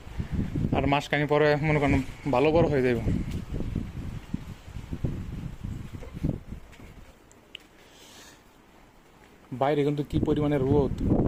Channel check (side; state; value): both; identical; correlation 1.00